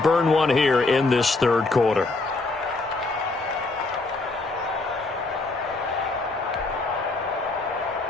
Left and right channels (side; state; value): right; quieter; 3.4 dB